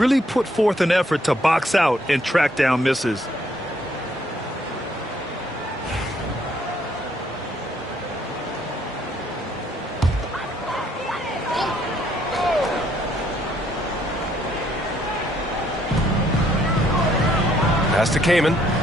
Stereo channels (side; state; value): both; normal; correlation 0.68